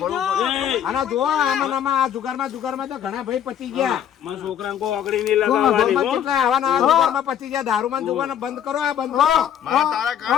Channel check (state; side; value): quieter; right; 9.6 dB